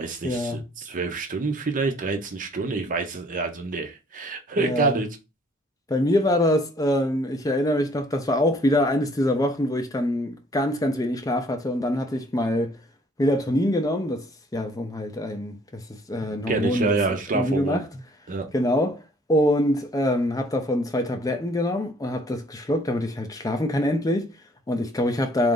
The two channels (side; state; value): both; normal; correlation 0.59